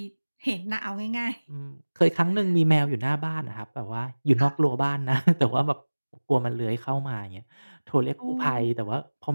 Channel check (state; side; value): inverted; both; correlation -1.00